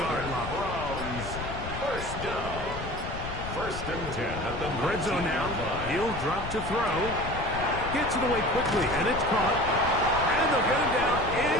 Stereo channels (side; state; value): left; noise; rumble, 8 dB below the sound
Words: line. Browns 1st down. 1st and 10 at the Red zone now. He'll drop to throw. Gets it away quickly, and it's caught. And they'll get him down